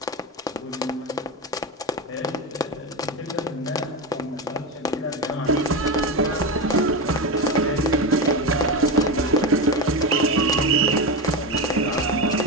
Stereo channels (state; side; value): normal; both; correlation 0.17